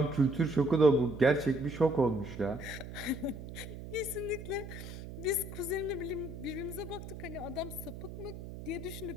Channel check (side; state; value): right; noise; hum, 11 dB below the sound